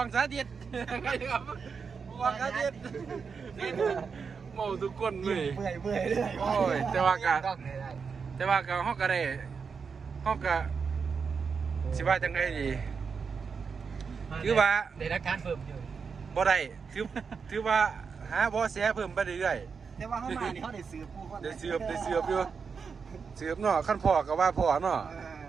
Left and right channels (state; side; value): quieter; left; 5.7 dB